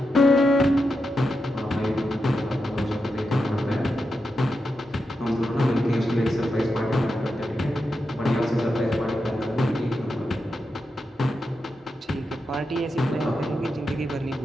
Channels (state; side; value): normal; both; correlation 0.87